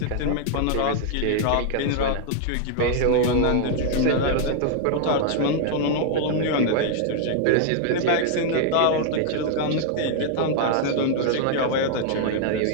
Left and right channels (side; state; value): both; different; correlation 0.00